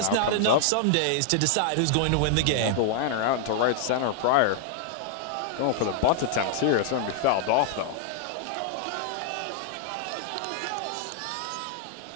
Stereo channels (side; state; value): both; different; correlation 0.00